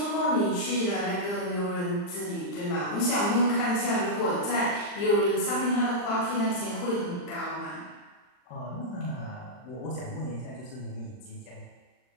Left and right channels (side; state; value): right; late; 39 ms